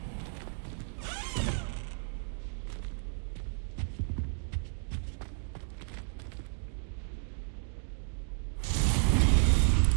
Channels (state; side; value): silent; left; digital silence